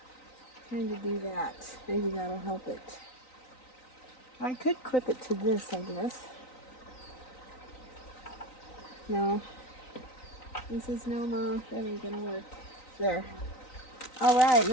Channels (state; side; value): late; right; 3.9 ms